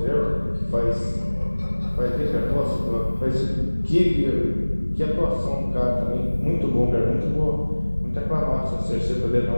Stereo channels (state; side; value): inverted; both; correlation -1.00